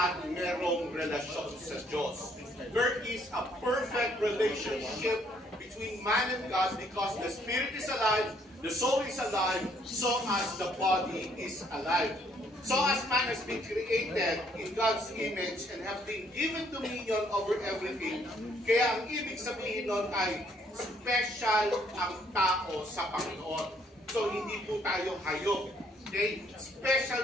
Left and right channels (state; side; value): normal; both; correlation 0.67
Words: merong relasyon sa Diyos. There is a perfect relationship between man and God because the spirit is alive, the soul is alive, so as the body is alive. So as man has been created in God's image and have been given dominion over everything, kaya ang ibig sabihin nun ay special ang tao sa Panginoon. So hindi po tayo hayop. Okay?